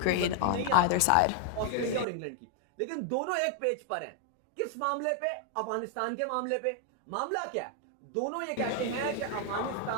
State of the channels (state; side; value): different; both; correlation 0.00